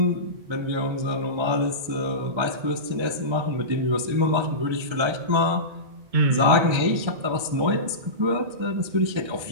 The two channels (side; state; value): left; late; 1.3 ms